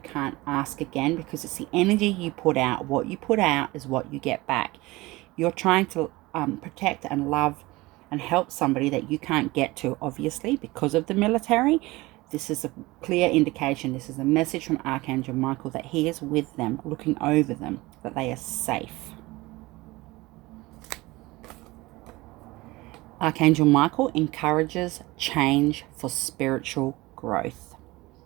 ask again, because it's the energy you put out. What you put out is what you get back. You're trying to protect and love and help somebody that you can't get to, obviously, because of the military. This is a clear indication. This is a message from Archangel Michael that he is with them, looking over them, that they are safe. Archangel Michael encourages change for spiritual growth,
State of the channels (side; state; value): left; quieter; 20.9 dB